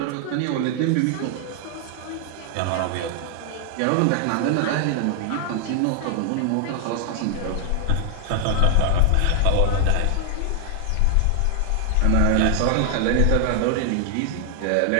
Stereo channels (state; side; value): different; both; correlation 0.00